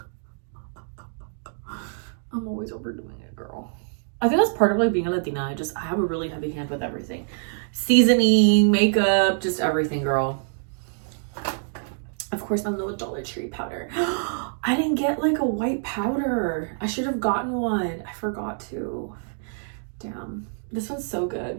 I'm always overdoing it, girl. I think that's part of, like, being a Latina. I have a really heavy hand with everything. Seasoning, makeup, just everything, girl. Of course, my little Dollar Tree powder. I didn't get, like, a white powder. I should have gotten one. I forgot to. Damn. This one's so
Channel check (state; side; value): silent; left; digital silence